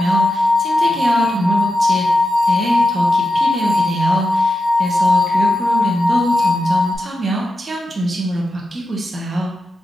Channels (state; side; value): normal; both; correlation 0.90